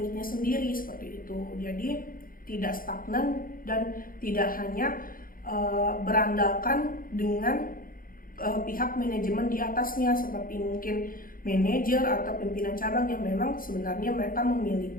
sendiri, seperti itu. Jadi tidak stagnan dan tidak hanya berandalkan dengan pihak manajemen di atasnya, seperti mungkin manajer atau pimpinan cabang yang memang sebenarnya mereka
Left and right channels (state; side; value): late; right; 0.41 ms